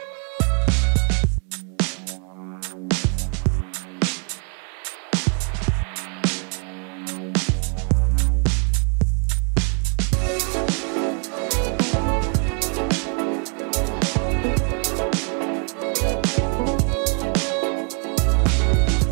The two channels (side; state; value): left; quieter; 38.3 dB